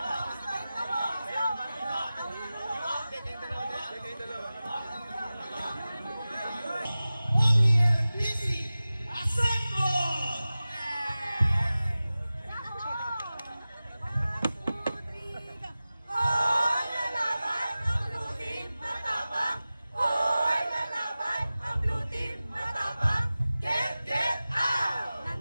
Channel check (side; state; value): both; inverted; correlation -0.96